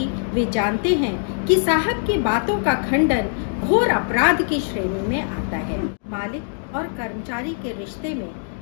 वे जानते हैं कि साहब की बातों का खंडन घोर अपराध की श्रेणी में आता है। मालिक और कर्मचारी के रिश्ते में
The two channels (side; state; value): right; silent; 64 dB below the other